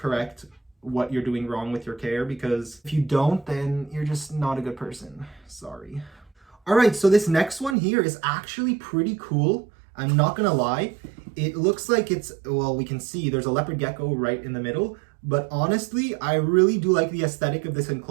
what you're doing wrong with your care, because if you don't, then you're just not a good person. Sorry. All right, so this next one here is actually pretty cool. I'm not gonna lie. It looks like it's, well, we can see there's a leopard gecko right in the middle, but honestly, I really do like the aesthetic of this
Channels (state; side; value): drops out; left; at 7.8 s